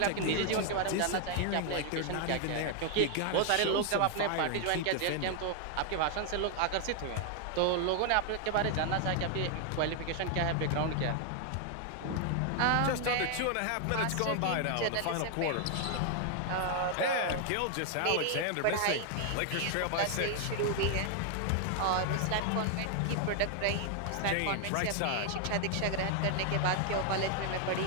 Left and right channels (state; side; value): different; both; correlation 0.00